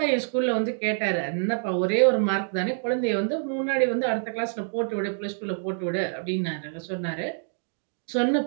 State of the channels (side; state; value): left; silent; digital silence